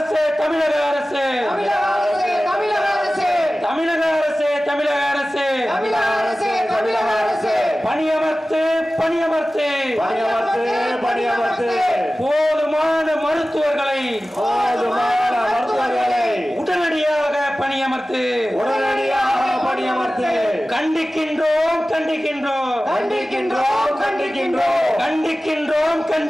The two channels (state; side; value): normal; both; correlation 0.96